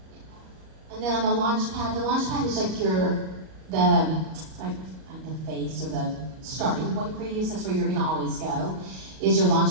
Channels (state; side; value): late; left; 38 ms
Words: And then on the launchpad is the face or the starting point for you. So that's where you're gonna always go, is your